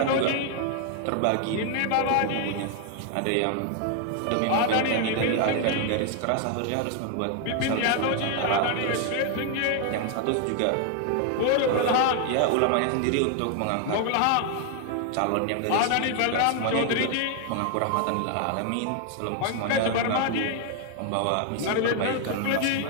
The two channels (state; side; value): different; both; correlation 0.00